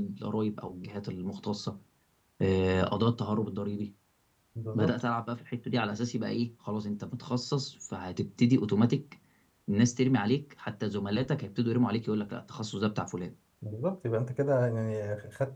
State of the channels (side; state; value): both; identical; correlation 1.00